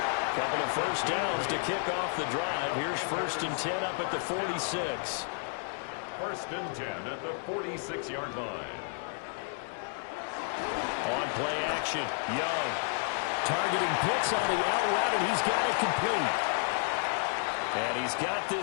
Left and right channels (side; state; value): right; silent; 57 dB below the other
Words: Couple of first downs to kick off the drive. Here's first and 10 up at the 46. First and 10 at the 46-yard line. On play action, Young. Targeting Pitts on the out route, and he's got it complete. And he's got